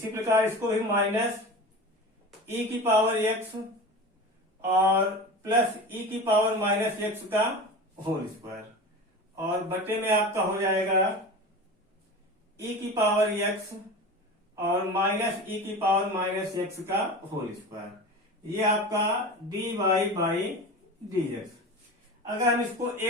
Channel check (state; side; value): normal; both; correlation 0.31